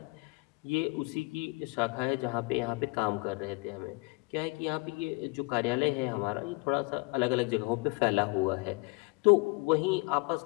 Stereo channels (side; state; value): right; quieter; 28.2 dB